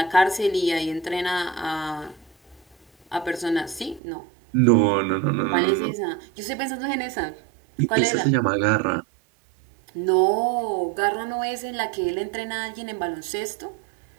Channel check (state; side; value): drops out; left; at 4.0 s